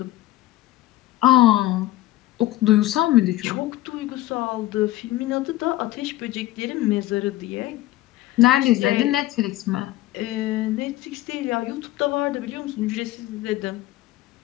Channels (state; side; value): quieter; right; 16.2 dB